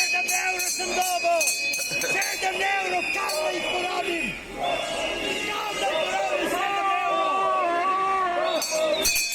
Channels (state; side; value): identical; both; correlation 1.00